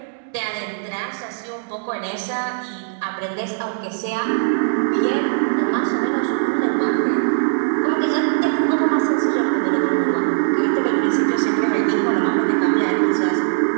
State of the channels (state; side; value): silent; left; digital silence